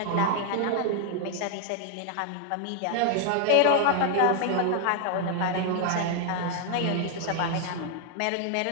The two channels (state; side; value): different; both; correlation 0.00